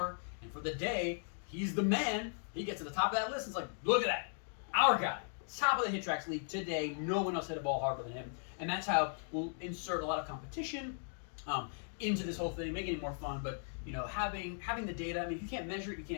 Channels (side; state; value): right; silent; digital silence